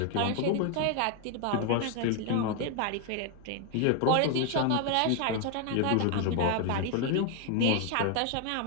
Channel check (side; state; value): both; different; correlation 0.01